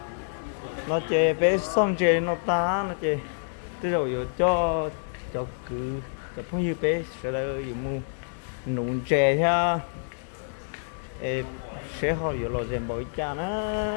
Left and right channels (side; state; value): right; silent; digital silence